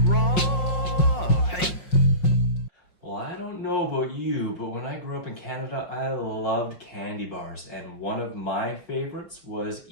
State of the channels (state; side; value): late; right; 5.6 ms